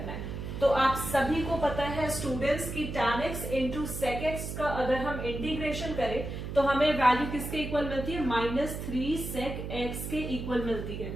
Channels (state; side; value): noise; right; hum, 6 dB below the sound